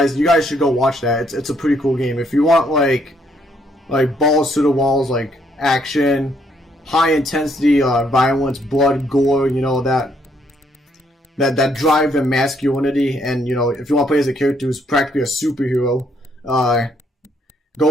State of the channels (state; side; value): normal; both; correlation 0.71